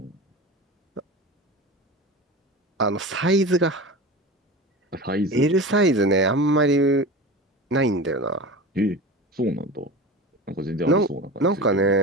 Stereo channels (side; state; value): both; normal; correlation 0.31